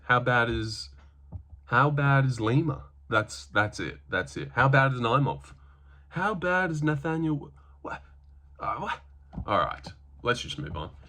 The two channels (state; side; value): identical; both; correlation 1.00